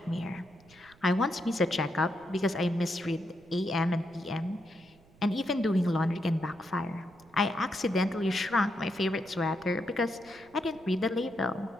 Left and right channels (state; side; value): noise; right; rumble, 27 dB below the sound